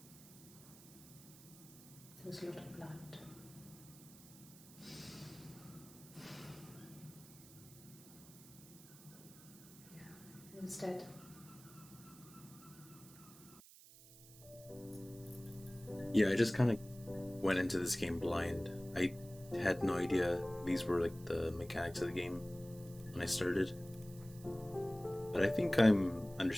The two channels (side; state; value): right; noise; hiss, 20 dB below the sound